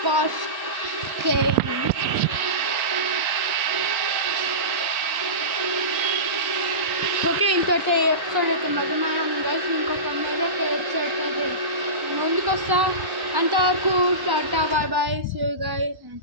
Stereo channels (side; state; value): left; late; 1.1 ms